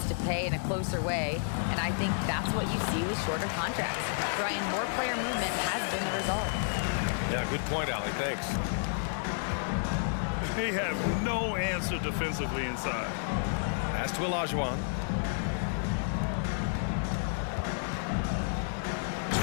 to pay in a closer way, and I think that's what you see with shorter contracts." Brian, more player movement has been the result. Yeah, good point, Allie. Thanks. They have no answer defensively inside. Pass to Olajuwon.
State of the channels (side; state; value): right; silent; digital silence